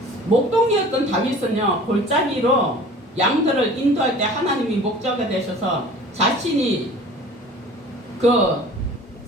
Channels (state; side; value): normal; both; correlation 0.45